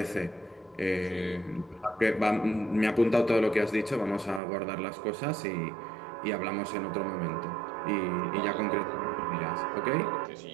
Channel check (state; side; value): drops out; left; at 4.4 s